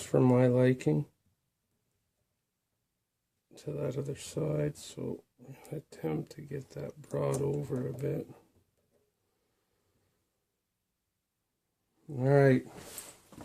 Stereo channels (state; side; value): identical; both; correlation 1.00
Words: for my liking to that other side, so I'll attempt to get that brought over a bit. All right,